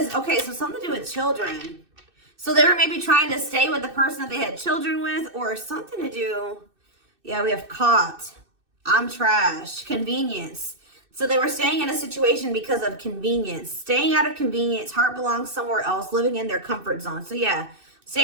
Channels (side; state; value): left; late; 2.6 ms